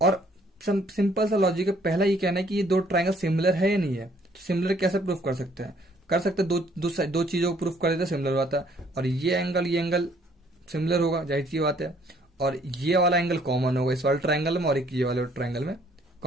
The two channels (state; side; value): normal; both; correlation 0.63